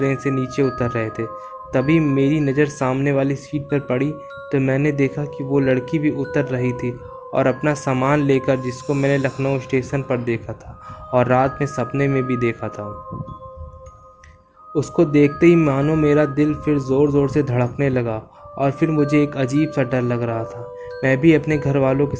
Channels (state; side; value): identical; both; correlation 1.00